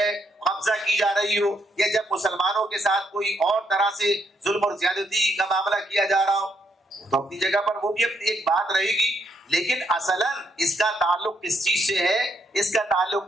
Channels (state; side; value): normal; both; correlation 0.75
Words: قبضہ کی جا رہی ہو، یا جب مسلمانوں کے ساتھ کوئی اور طرح سے ظلم اور زیادتی کا معاملہ کیا جا رہا ہو، تو اپنی جگہ پر وہ بھی اپنی ایک بات رہے گی، لیکن اصلاً اس کا تعلق کس چیز سے ہے؟ اس کا تعلق